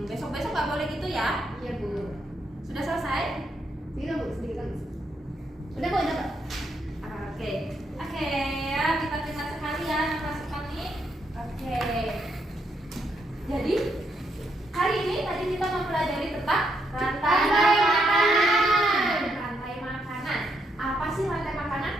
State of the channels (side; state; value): both; normal; correlation 0.77